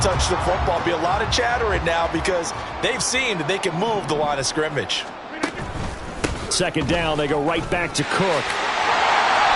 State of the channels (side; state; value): both; identical; correlation 1.00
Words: the football. Be a lot of chatter right now because they've seen that they can move the line of scrimmage. Second down, they go right back to Cook.